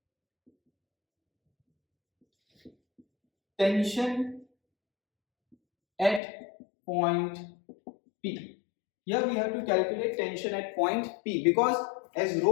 tension at point P. Here we have to calculate tension at point P, because as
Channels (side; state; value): right; drops out; at 6.2 s